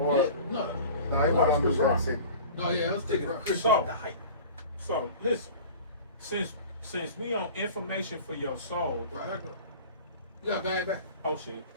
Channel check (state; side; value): inverted; both; correlation -0.40